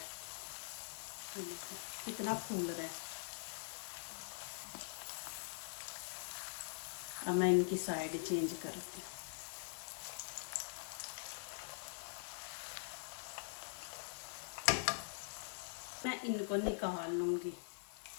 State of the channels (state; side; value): silent; right; digital silence